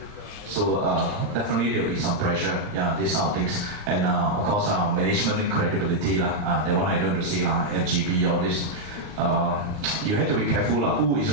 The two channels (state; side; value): late; left; 39 ms